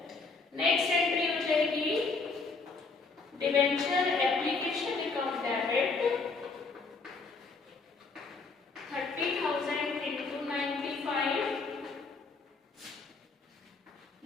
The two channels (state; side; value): quieter; right; 4.2 dB